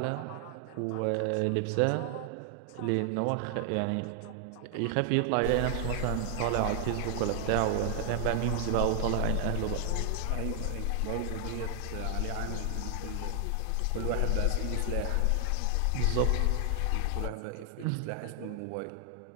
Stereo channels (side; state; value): both; different; correlation 0.00